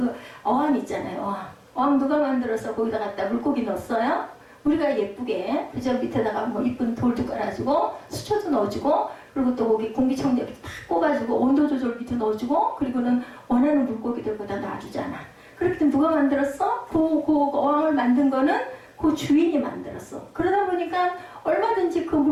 어항 있잖아요. 어항 누가 만들어서 거기다 갖다 물고기 넣었어요? 우리가 예쁘게 그저 밑에다가 뭐 이쁜 돌도 깔아주고 수초도 넣어주고 그리고 또 거기 공기청정기 탁 꽂아주고 온도 조절 밑에 넣어주고 그리고는 원하는 물고기들 거기다 놔주잖아. 그렇기 때문에 누가 만들었어? 그 어항을 만든 거는 그 주인이 만들었어. 그러다 보니까 얼마든지 그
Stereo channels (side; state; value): both; identical; correlation 1.00